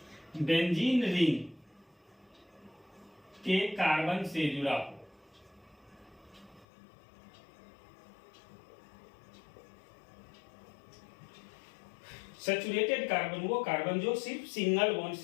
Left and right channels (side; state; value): right; drops out; at 6.7 s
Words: बेंजीन रिंग के कार्बन से जुड़ा हो। सैचुरेटेड कार्बन वो कार्बन जो सिर्फ सिंगल बॉन्ड